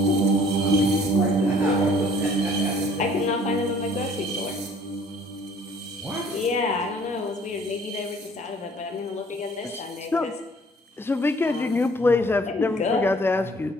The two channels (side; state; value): both; normal; correlation 0.56